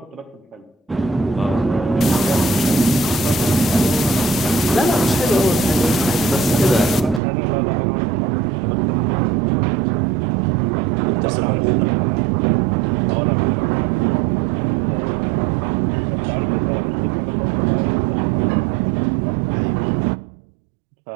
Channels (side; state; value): left; drops out; at 7.2 s